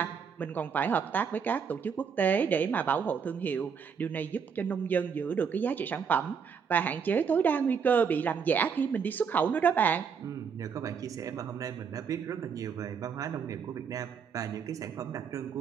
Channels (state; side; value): quieter; left; 6.5 dB